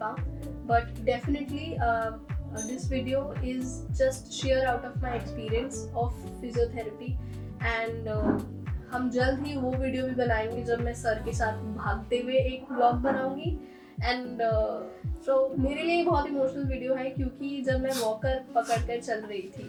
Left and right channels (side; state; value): both; identical; correlation 1.00